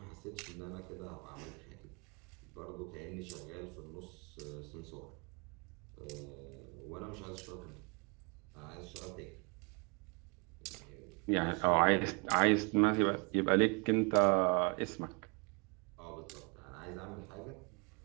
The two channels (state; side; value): quieter; left; 32.6 dB